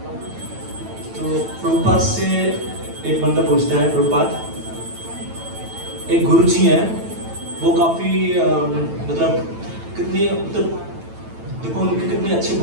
तो प्रभुपाद से एक बंदा पूछता है, प्रभुपाद एक गुरुजी हैं, वो काफी मतलब कितनी मतलब देखो उनके कितने अच्छे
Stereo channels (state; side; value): late; left; 9.0 ms